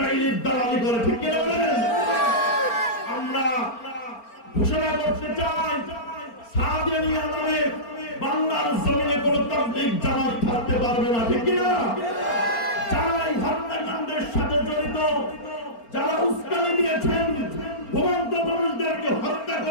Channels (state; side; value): late; right; 4.4 ms